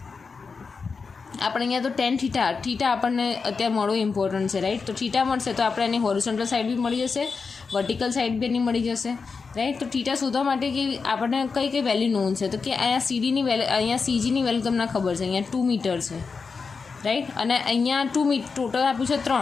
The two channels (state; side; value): quieter; right; 4.9 dB